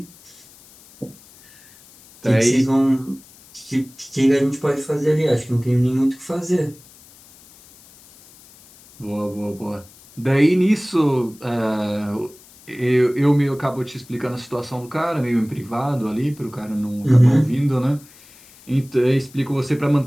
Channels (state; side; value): noise; left; hiss, 24 dB below the sound